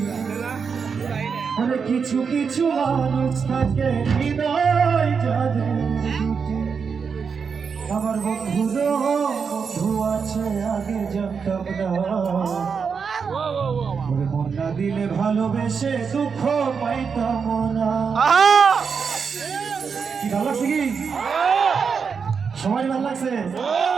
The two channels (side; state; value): left; quieter; 5.9 dB